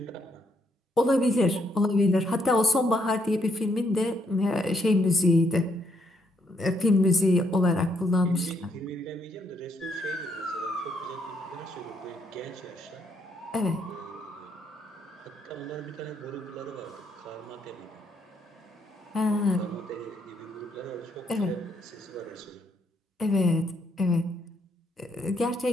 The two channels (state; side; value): normal; both; correlation 0.74